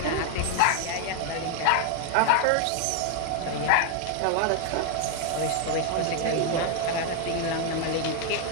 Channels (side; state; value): both; different; correlation 0.01